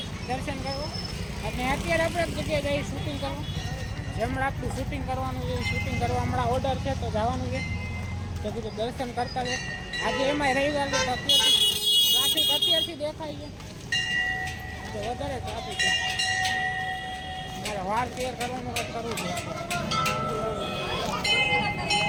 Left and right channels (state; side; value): identical; both; correlation 1.00